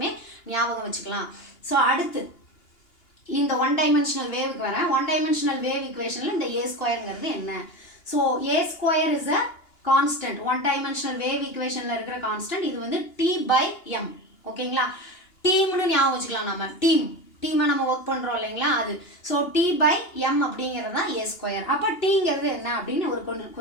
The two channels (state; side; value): late; right; 2.9 ms